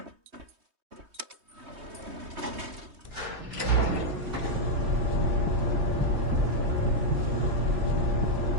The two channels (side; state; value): left; late; 3.2 ms